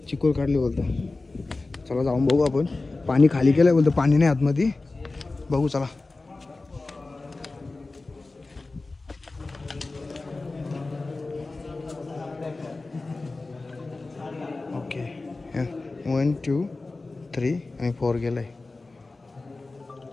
चिकोल काढले बोलतो. चला जाऊन बघू आपण. पाणी खाली केलंय बोलतो. पाणी नाही आतमध्ये. बघू चला. ओके 1 2 3 आणि 4 गेलंय.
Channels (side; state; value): right; quieter; 3.4 dB